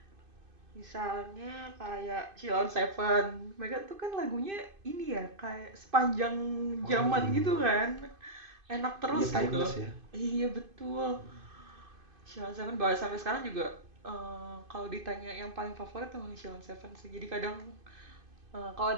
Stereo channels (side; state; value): left; late; 2.5 ms